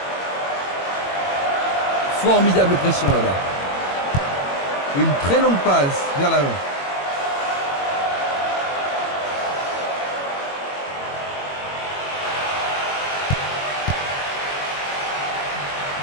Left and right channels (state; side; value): late; right; 22 ms